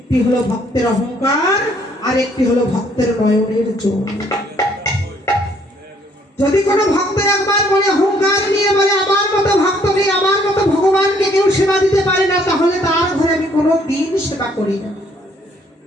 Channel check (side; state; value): both; normal; correlation 0.64